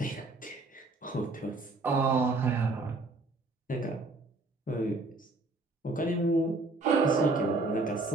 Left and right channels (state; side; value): quieter; left; 3.2 dB